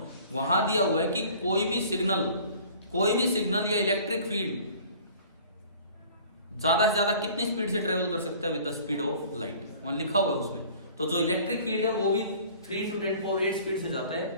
वहां दिया हुआ है कि कोई भी सिग्नल या इलेक्ट्रिक फील्ड ज्यादा से ज्यादा कितनी स्पीड से ट्रेवल कर सकता है with the speed of light, वहां लिखा हुआ है उसमें। तो जो इलेक्ट्रिक फील्ड है वो भी 3 to 10⁸ स्पीड से जाता है।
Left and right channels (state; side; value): inverted; both; correlation -0.49